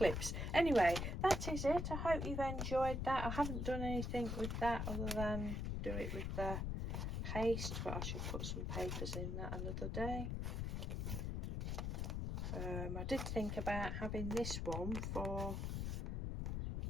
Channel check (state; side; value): noise; left; rumble, 1 dB below the sound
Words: Anyway, that is it. I hope you've enjoyed that. I haven't done anything with that other than do it with the paste, but I should put some papers in that another day. I did think about having this one for